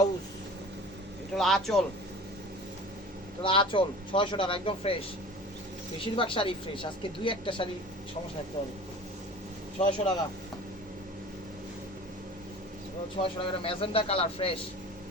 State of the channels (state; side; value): normal; both; correlation 0.40